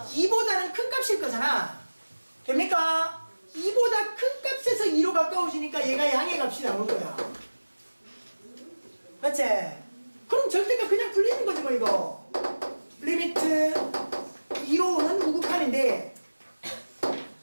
큰 값일 거잖아. 됩니까? 2보다 큰 값에서 2로 가까워지니까 얘가 양의 값이 나올 거야. 맞지? 그럼 절대값 그냥 풀리는 거지 뭐 이거. 리미트 2로 오는 우극한인데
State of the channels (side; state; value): both; inverted; correlation -1.00